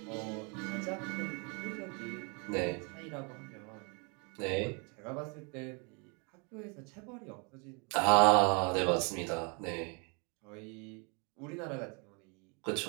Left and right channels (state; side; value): quieter; left; 33.7 dB